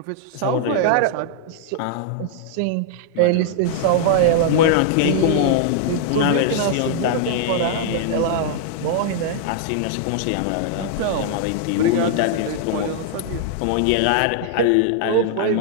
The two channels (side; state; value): both; different; correlation -0.01